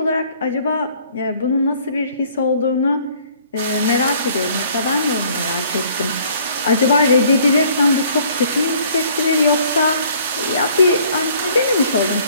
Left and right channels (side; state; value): both; inverted; correlation -0.58